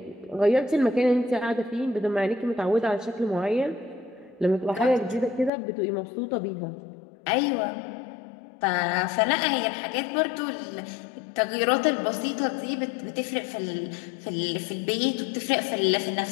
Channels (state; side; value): drops out; right; at 5.5 s